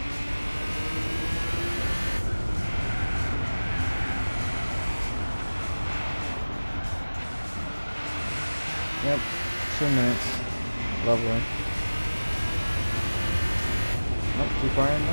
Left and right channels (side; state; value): both; inverted; correlation -1.00